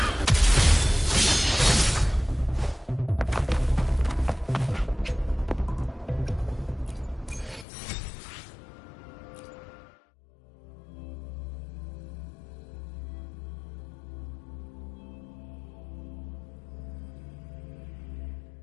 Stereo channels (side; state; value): right; drops out; at 7.7 s